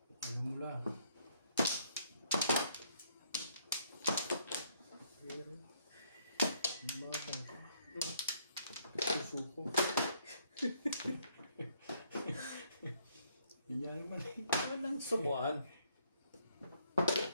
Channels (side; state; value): both; inverted; correlation -0.68